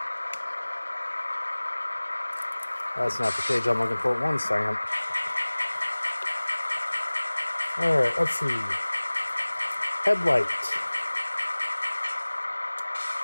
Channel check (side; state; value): both; inverted; correlation -1.00